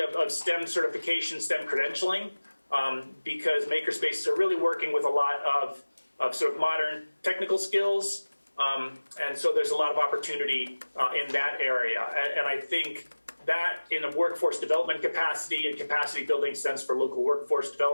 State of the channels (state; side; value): inverted; both; correlation -1.00